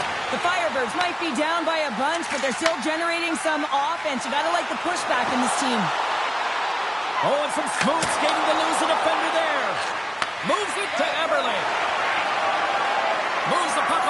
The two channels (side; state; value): both; identical; correlation 1.00